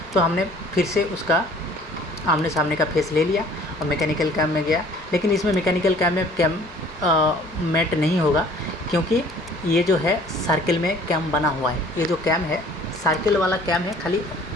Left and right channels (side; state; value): both; normal; correlation 0.53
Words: तो हमने फिर से उसका आमने सामने का फेस ले लिया और मैकेनिकल कैम में गया। लेकिन इसमें मैकेनिकल कैम में कैम मेट नहीं होगा क्योंकि ये जो है सर्किल में कैम बना हुआ है। ये जो कैम है सर्किल वाला कैम है, खाली